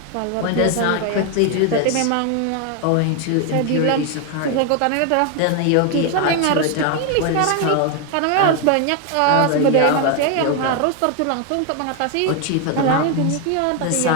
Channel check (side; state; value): both; different; correlation 0.01